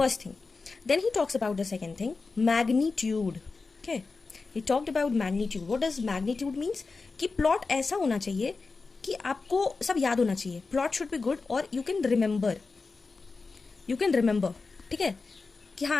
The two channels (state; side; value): quieter; right; 4.2 dB